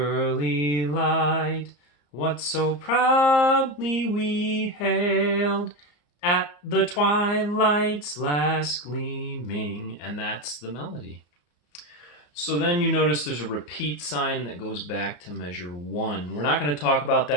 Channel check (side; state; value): right; late; 34 ms